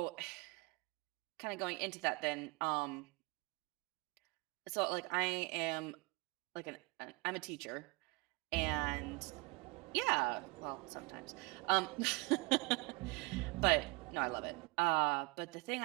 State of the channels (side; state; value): left; quieter; 26.7 dB